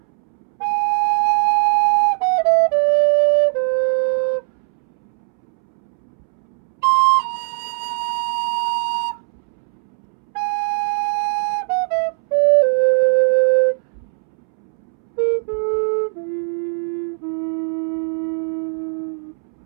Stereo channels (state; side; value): silent; left; 66 dB below the other